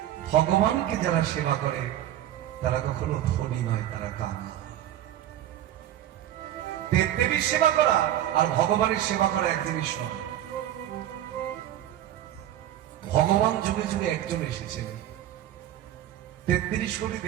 ভগবানকে যারা সেবা করে তারা কখনো ধনী নয়, তারা কানা। দেবদেবীর সেবা করা আর ভগবানের সেবা করা এক জিনিস নয়। ভগবান যুগে যুগে একজন এসেছেন। 33 কোটি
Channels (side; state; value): left; quieter; 12.2 dB